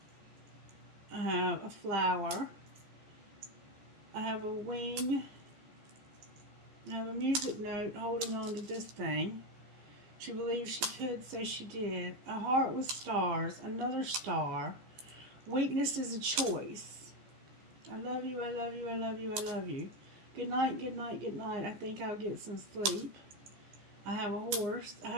I have a flower. I have a wing. I have a music note holding on to this thing. She believed she could, so she did. A heart with stars, another star. Weakness is a choice. I love you, I love you, I love you, I love you. Good night, good night, good night. I think I'll get some sleep. I have a horse. I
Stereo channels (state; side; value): late; left; 15 ms